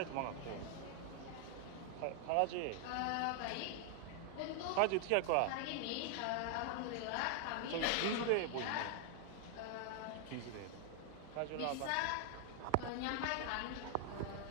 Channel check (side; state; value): both; different; correlation 0.00